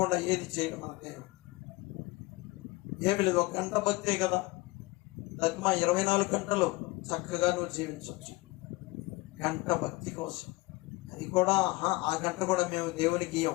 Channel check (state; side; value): quieter; right; 22.1 dB